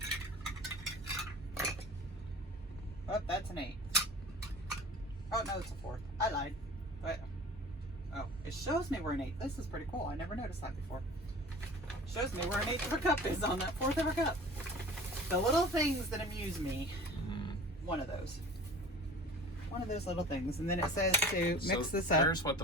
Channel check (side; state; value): both; normal; correlation 0.41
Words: Oh, that's an 1/8. Oh, no, it's a 1/4. I lied. But, oh, it shows me where an 1/8. This is pretty cool. I never noticed that before. It shows me where an 1/8 of a cup is on that 1/4 of a cup. The little things that amuse me. One of those. One of those little things. And then it says to mix this up. There's what